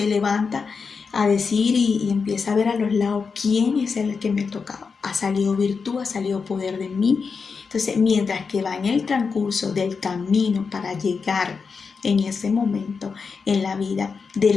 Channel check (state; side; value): quieter; right; 5.2 dB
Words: levanta a decir y empieza a ver a los lados quién es el que me ha tocado. Ha salido virtud, ha salido poder de mí. Entonces, mientras que va en el transcurso del camino para llegar en ese momento en la vida de